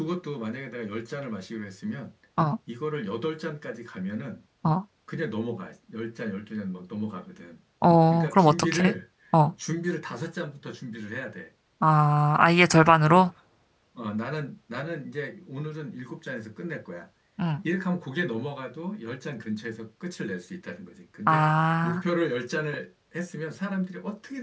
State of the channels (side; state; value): both; identical; correlation 1.00